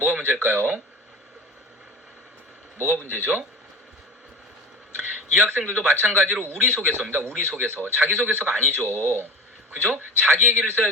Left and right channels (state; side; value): normal; both; correlation 0.32